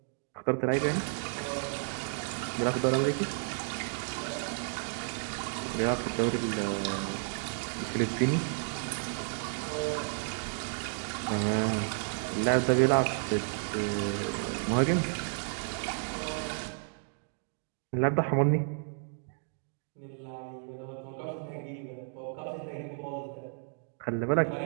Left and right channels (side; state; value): left; silent; 56 dB below the other